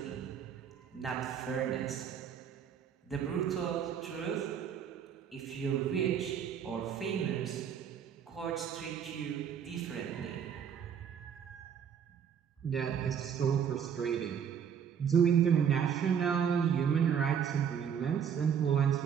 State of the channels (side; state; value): left; quieter; 8.0 dB